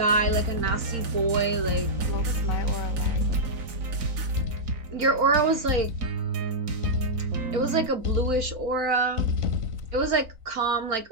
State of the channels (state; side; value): late; left; 3.9 ms